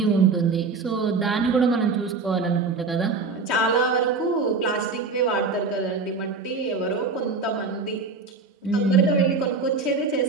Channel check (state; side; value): quieter; left; 4.3 dB